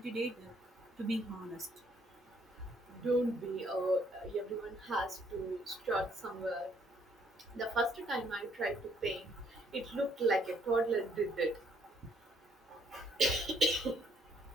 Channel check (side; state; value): both; normal; correlation 0.66